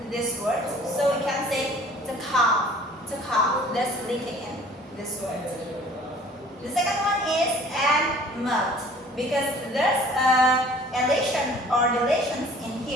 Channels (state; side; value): normal; both; correlation 0.51